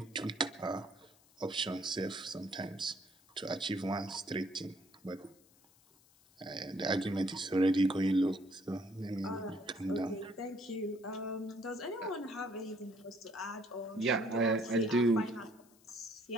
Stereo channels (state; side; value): noise; left; hiss, 29 dB below the sound